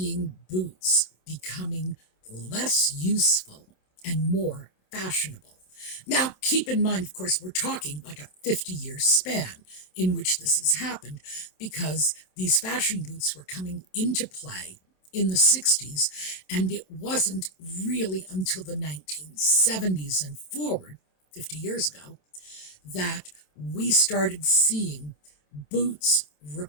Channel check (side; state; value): right; late; 27 ms